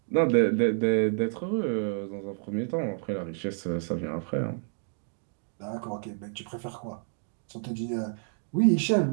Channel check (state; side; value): silent; left; 58 dB below the other